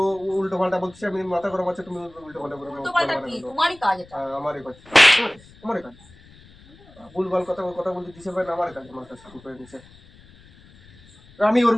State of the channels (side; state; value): left; noise; rumble, 25 dB below the sound